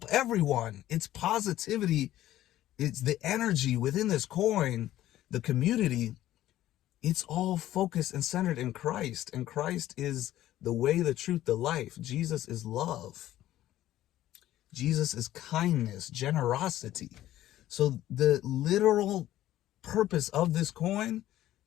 everyone. It's positivity. It's the energy within this coin, the community. It's all focused and centered in Christ. And Christ is the way, the truth, the life. Jesus is love. Jesus is kindness, generosity. So the literal purpose of this coin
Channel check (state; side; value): quieter; right; 13.9 dB